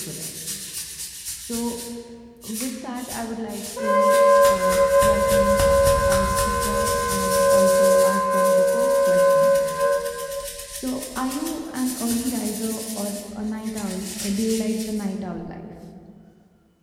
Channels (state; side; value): identical; both; correlation 1.00